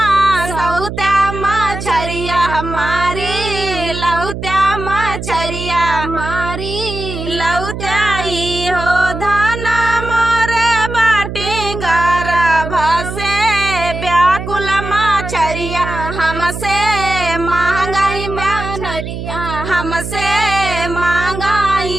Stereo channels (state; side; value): noise; right; hum, 7 dB below the sound